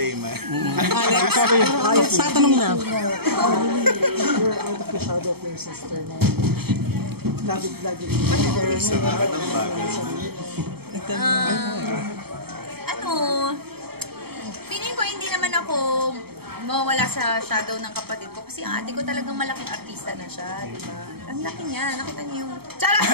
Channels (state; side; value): late; left; 0.96 ms